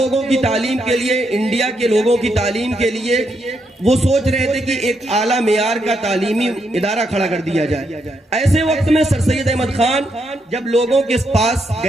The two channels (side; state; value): both; normal; correlation 0.79